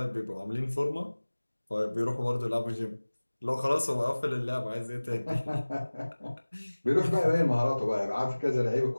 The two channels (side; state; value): both; inverted; correlation -1.00